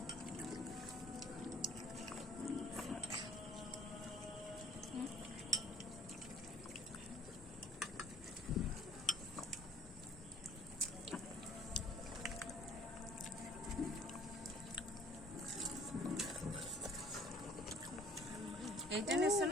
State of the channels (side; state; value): both; normal; correlation 0.55